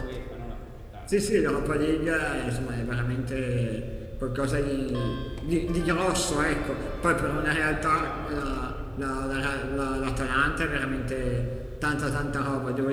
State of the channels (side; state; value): both; identical; correlation 1.00